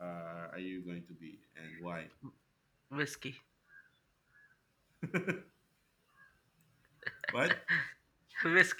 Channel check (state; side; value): identical; both; correlation 1.00